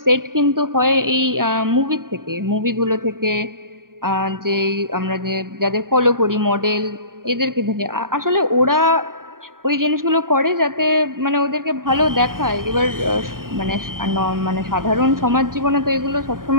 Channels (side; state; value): left; late; 0.91 ms